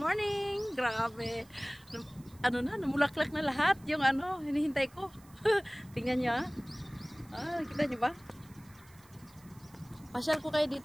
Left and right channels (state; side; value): noise; right; hiss, 26 dB below the sound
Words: Grabe. Ano na, namulaklak na lahat yung ano, hinihintay ko. Tingnan nyo ah. Nakita nyo ba? Pasyal ko kayo